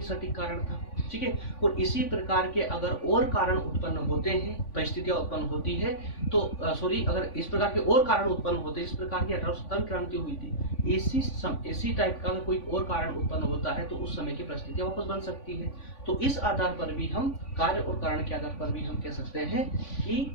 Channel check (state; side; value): late; right; 3.5 ms